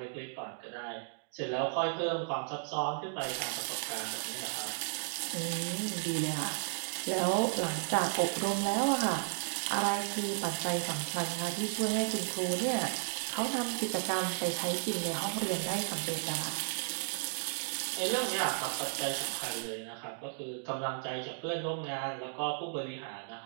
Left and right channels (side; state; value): left; silent; digital silence